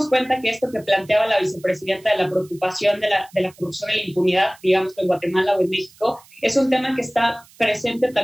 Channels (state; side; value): noise; right; hiss, 26 dB below the sound